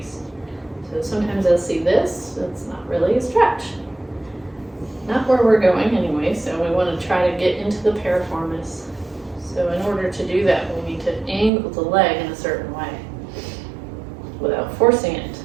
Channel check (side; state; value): left; drops out; at 11.5 s